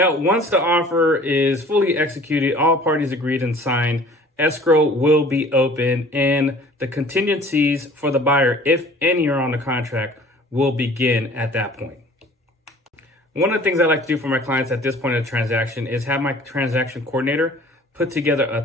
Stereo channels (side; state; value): both; normal; correlation 0.49